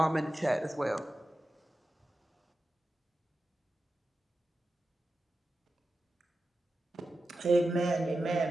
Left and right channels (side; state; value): both; normal; correlation 0.92